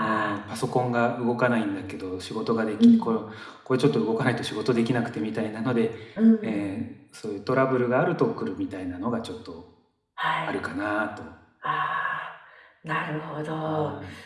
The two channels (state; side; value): identical; both; correlation 1.00